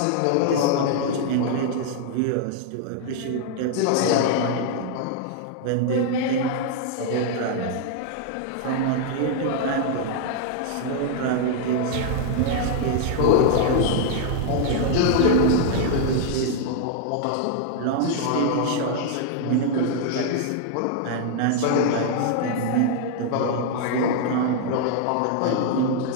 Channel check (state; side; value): different; both; correlation 0.00